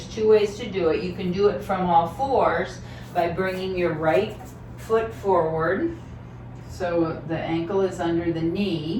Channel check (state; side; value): identical; both; correlation 1.00